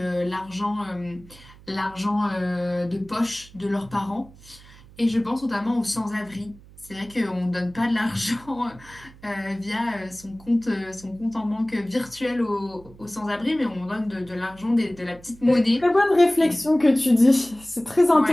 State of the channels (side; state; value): right; noise; hum, 22 dB below the sound